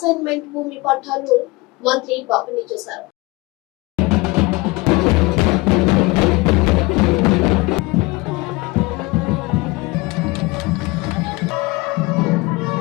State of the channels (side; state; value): right; quieter; 23.8 dB